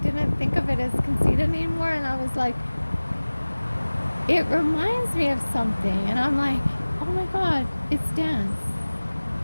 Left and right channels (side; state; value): both; inverted; correlation -1.00